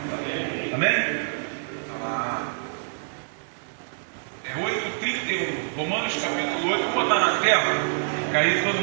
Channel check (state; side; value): silent; left; 61 dB below the other